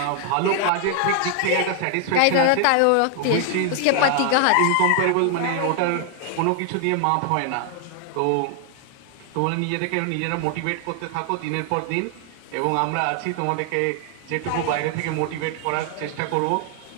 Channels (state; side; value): different; both; correlation 0.00